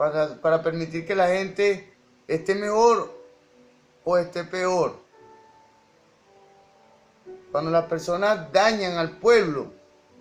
permitir que la gente esté mejor o esté peor. Cuando las personas dañan al pueblo,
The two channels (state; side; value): identical; both; correlation 1.00